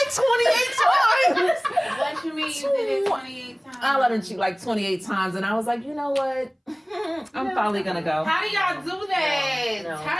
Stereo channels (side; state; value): both; identical; correlation 1.00